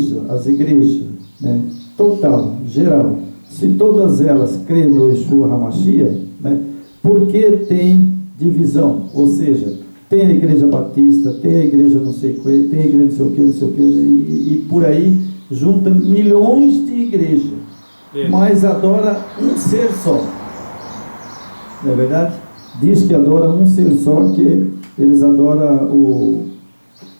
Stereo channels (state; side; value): inverted; both; correlation -1.00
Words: as igrejas, né, total, geral, se todas elas creem no Yeshua HaMashiach, né, por que tem divisão? Ou seja, tem a igreja batista, tem a igreja não sei o que, tem a igreja não sei o que, e por aí junta milhões de igrejas, mas adora um ser só. Não é verdade? Diz que adora um ser só, que eles adoram